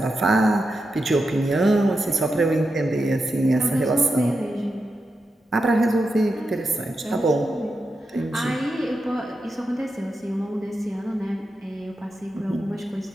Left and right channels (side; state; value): both; normal; correlation 0.88